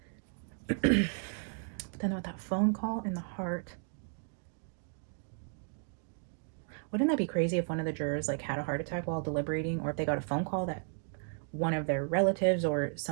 But then with that phone call in the heart, wouldn't that be crazy if one of the jurors like had a heart attack while deliberating, or if they got a phone call that one of their relatives or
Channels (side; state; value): left; silent; 55 dB below the other